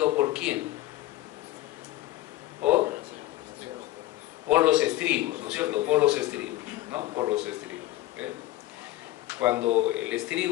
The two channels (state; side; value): quieter; right; 16.2 dB